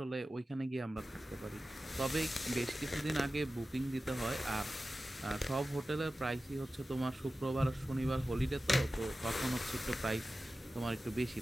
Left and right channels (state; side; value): normal; both; correlation 0.94